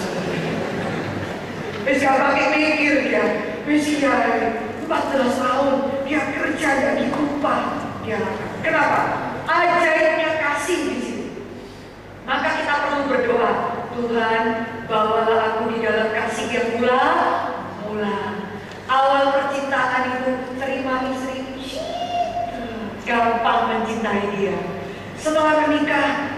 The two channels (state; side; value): identical; both; correlation 1.00